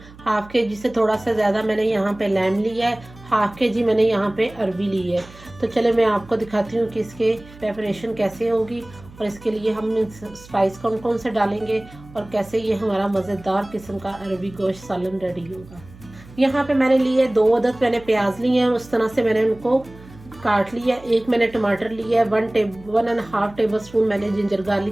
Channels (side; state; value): right; noise; hum, 21 dB below the sound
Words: हाफ़ केजी से थोड़ा सा ज़्यादा मैंने यहाँ पे लैम लिया है, हाफ़ केजी मैंने यहाँ पे अरबी ली है। तो चले मैं आपको दिखाती हूँ कि इसके प्रेपरेशन कैसे होगी और इसके लिए हम स्पाइस कौन कौन से डालेंगे और कैसे ये हमारा मज़ेदार किस्म का अरबी गोश्त सालन रेडी होगा। यहाँ पे मैंने लिए 2 अदद मैंने प्याज लिए हैं, उस तरह से मैंने उनको काट लिया। एक मैंने टमाटर लिया है, 1.5 टेबल स्पून मैंने जिंजर